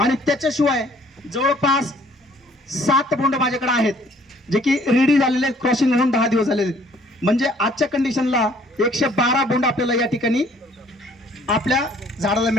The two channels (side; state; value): both; normal; correlation 0.59